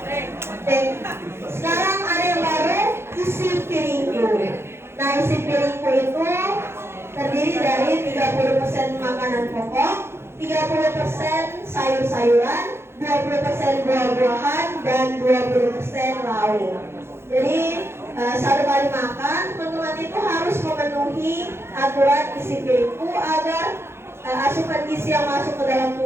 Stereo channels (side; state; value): left; late; 0.12 ms